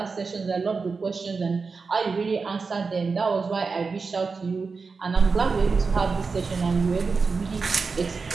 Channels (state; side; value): quieter; left; 4.7 dB